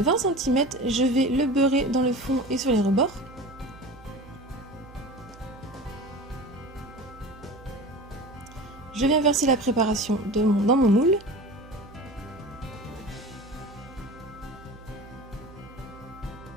cm, je vais le beurrer dans le fond et sur les rebords. Je viens verser la préparation dans mon moule.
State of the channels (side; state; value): right; noise; hum, 20 dB below the sound